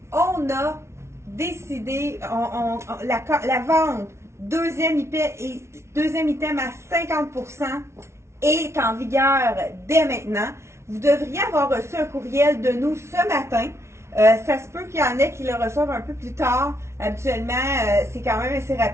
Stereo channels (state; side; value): late; left; 0.13 ms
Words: on a décidé, la vente deuxième item à 50% est en vigueur dès maintenant. Vous devriez avoir reçu un courriel de nous ce matin. Ça se peut qu'il y en ait qui le reçoivent un peu plus tard. Habituellement, c'est quand même assez